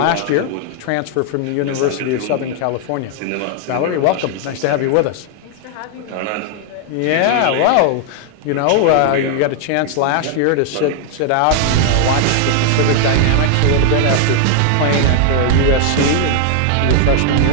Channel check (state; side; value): different; both; correlation 0.00